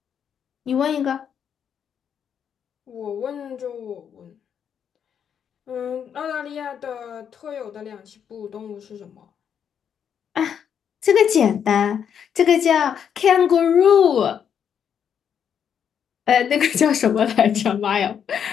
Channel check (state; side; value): quieter; right; 8.1 dB